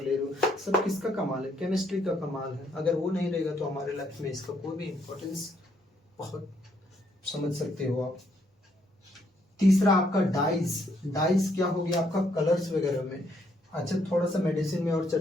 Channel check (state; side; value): normal; both; correlation 0.71